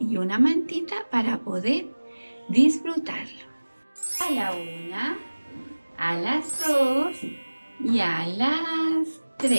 y una mantita para poder disfrutarlo. A la una, a las 2 y a las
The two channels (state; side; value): inverted; both; correlation -1.00